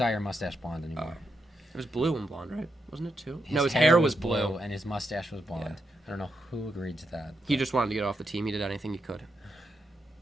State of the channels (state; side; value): normal; both; correlation 0.83